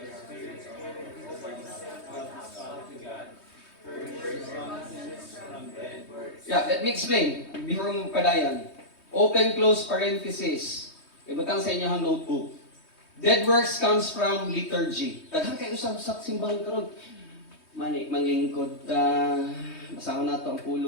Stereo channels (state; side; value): late; right; 3.2 ms